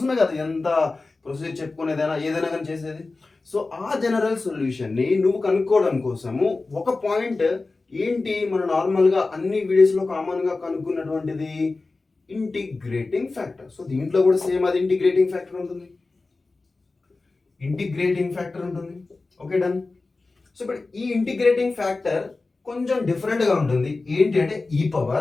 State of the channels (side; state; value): right; quieter; 3.6 dB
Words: కదా ఎంత ప్రొసీజర్ చెప్పుకునేదైనా ఏదైనా కానీ చేసేది. సో ఆ జనరల్ సొల్యూషన్ ని నువ్వు కనుక్కోవడం కోసము ఒక పాయింట్ ఏంటి, మన నార్మల్ గా అన్ని వీడియోస్ లో కామన్ గా కనుక్కున్నటువంటిది ఇంటిగ్రేటింగ్ ఫ్యాక్టర్. సో దీంట్లో కూడా సేమ్ అది ఇంటిగ్రేటింగ్ ఫ్యాక్టర్ ఉంటుంది. Okay done. సో ఇప్పుడు ఈ ఇంటిగ్రేటింగ్ ఫ్యాక్టర్ కొంచెం డిఫరెంట్ గా ఉంటుంది. ఏంటి అంటే ఈ